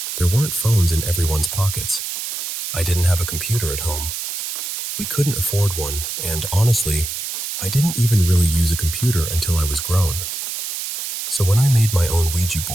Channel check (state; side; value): noise; right; hiss, 4 dB below the sound